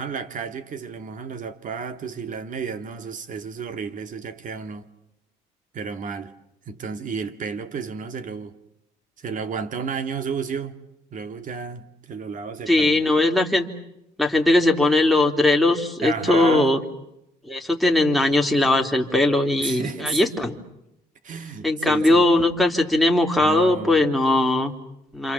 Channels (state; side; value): normal; both; correlation 0.76